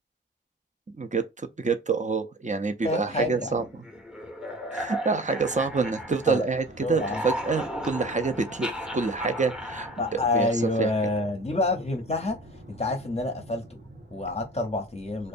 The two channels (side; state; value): both; normal; correlation 0.42